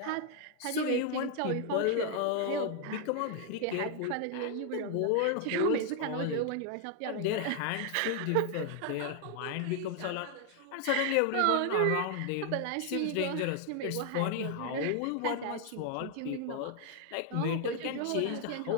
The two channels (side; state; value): both; different; correlation 0.00